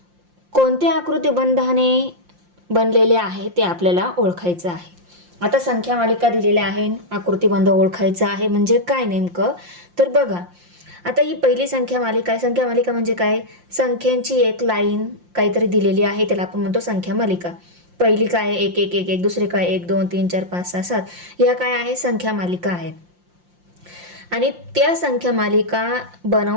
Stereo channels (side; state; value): left; late; 5.7 ms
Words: कोणत्या आकृतिबंधाने बनलेले आहे ते आपल्याला ओळखायचं आहे. आता संख्या मालिका दिलेल्या आहे, आकृतिबंध ओळखायचा आहे म्हणजे काय नेमकं, तर बघा. आता ही पहिली संख्या मालिका आहे. संख्या मालिका म्हणजे काय, संख्यांची एक लाईन काहीतरी दिलेली आहे, त्याला आपण म्हणतो संख्या मालिका. पहिली काय आहे 1 1 1 1, दुसरी काय 1 2 3 4 5 6 7, ह्या काय आहे संख्या मालिका आहेत. आणि त्या संख्या मालिका